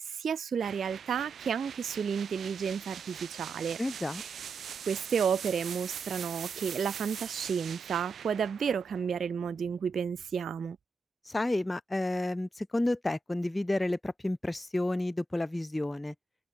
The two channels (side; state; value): left; quieter; 3.1 dB